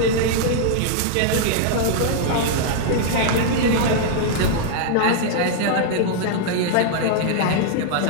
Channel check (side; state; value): both; different; correlation -0.01